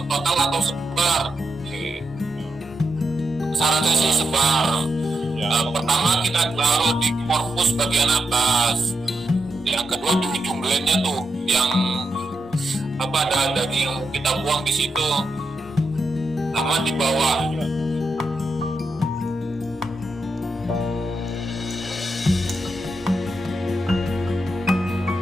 total atau sebar. Syaratnya sih sebar. Ya. Pertama kita taruh di korpus bagian atas. Yang kedua di ujung glandnya tuh yang apa ada daging kita buang di situ. Sama di bawah.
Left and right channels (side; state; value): both; normal; correlation 0.84